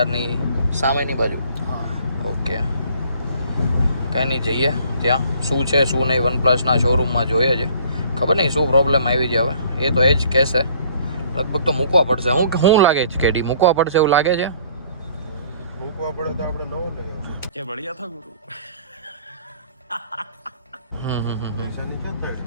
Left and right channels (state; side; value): inverted; both; correlation -0.56